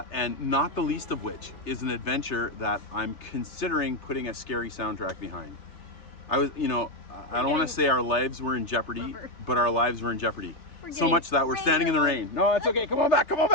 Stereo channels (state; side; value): late; right; 3.3 ms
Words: not the least of which is an adventure that I'm considering putting a scary soundtrack behind. I was, you know, I don't want to say our lives were in jeopardy, but our lives were in jeopardy. So much that we're standing in the rain. No, it's okay. Come on back. Come on